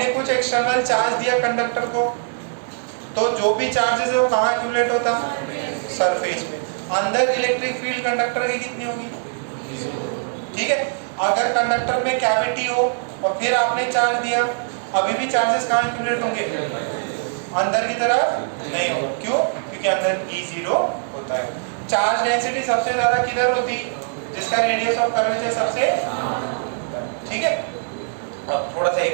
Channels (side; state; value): left; silent; digital silence